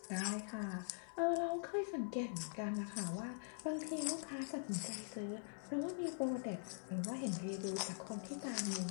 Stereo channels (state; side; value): silent; right; digital silence